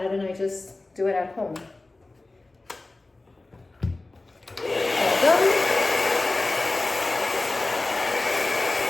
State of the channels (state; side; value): quieter; right; 3.1 dB